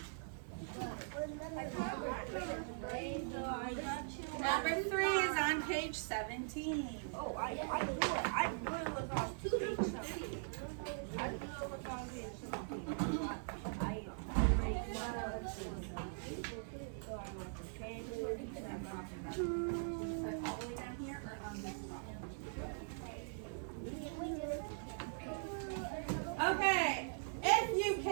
Number 3 is on page 17. Oh, I knew it. I knew it was on page 17. I knew it was on page 17. All the way down here or on this side? Okay, if you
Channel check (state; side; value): silent; left; 50 dB below the other